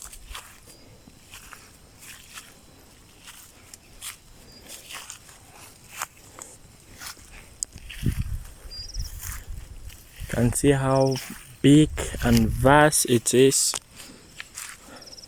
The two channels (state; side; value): identical; both; correlation 1.00